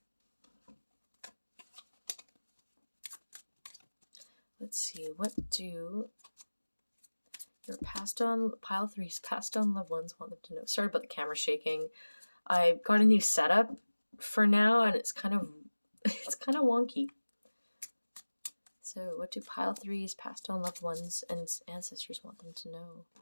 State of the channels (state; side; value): inverted; both; correlation -1.00